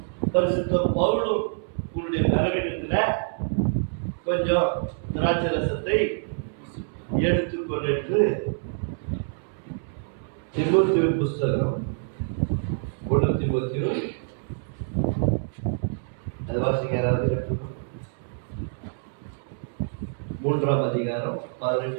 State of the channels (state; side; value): silent; left; 61 dB below the other